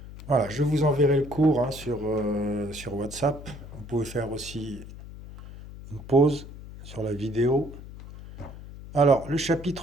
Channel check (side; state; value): left; noise; hum, 14 dB below the sound